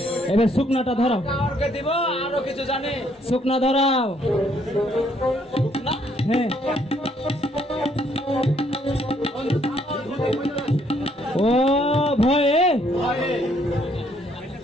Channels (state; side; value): normal; both; correlation 0.68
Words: এবার শুকনাটা ধরাও। কাউকে দিব, আরো কিছু জানে। শুকনা ধরাও। হ্যাঁ, ও ভয়ে